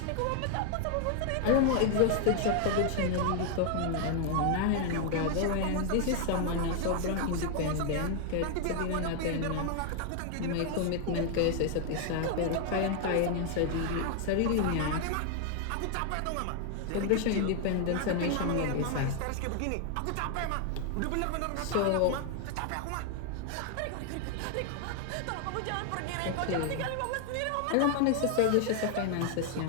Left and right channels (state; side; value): different; both; correlation 0.00